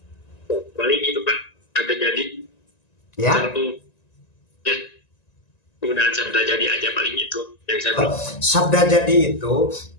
Paling itu Pak, ada jadi. Ya. Penggunaan sabda jadi aja paling itu yang saya tahu. Sabda jadi itu,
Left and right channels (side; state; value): right; late; 1.9 ms